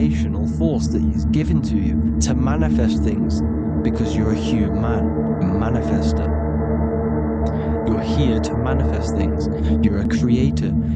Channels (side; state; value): both; identical; correlation 1.00